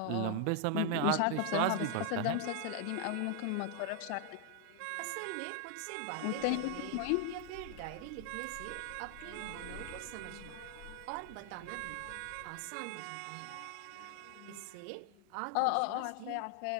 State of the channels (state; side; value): different; both; correlation 0.00